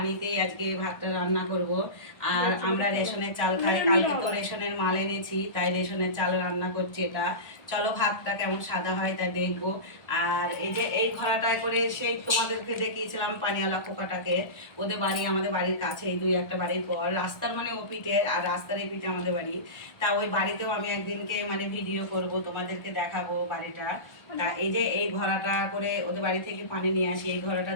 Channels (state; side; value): late; right; 1.2 ms